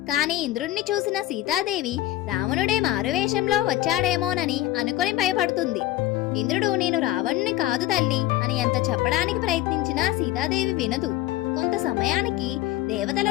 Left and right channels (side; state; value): right; quieter; 15.4 dB